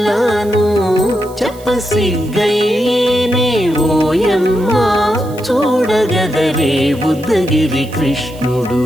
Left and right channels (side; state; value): right; noise; hiss, 22 dB below the sound